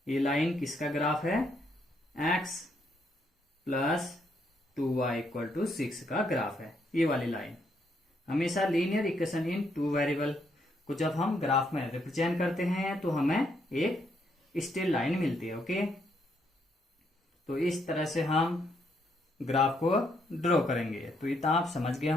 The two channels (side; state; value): both; normal; correlation 0.74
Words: ये लाइन किसका ग्राफ है, x + 2y = 6 का ग्राफ है। ये वाली लाइन हमेशा लीनियर इक्वेशन इन 2 वेरिएबल को जब हम ग्राफ में रिप्रेजेंट करते हैं तो हमें एक स्ट्रेट लाइन मिलती है। ओके, तो इस तरह से हम ग्राफ को ड्रॉ करेंगे। तो इतना आप समझ गए